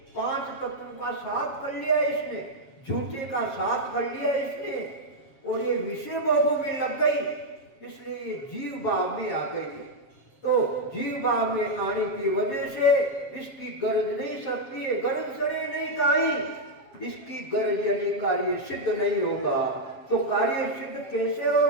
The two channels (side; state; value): right; late; 7.4 ms